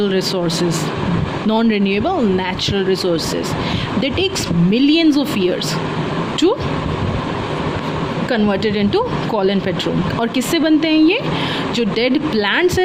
resources, non-renewable natural resources. They takes millions of years to converted into coal and petrol. और किससे बनते हैं ये? जो dead plants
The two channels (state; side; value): identical; both; correlation 1.00